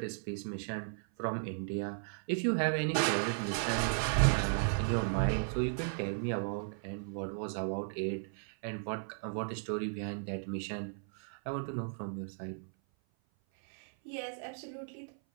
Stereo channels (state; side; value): silent; left; 54 dB below the other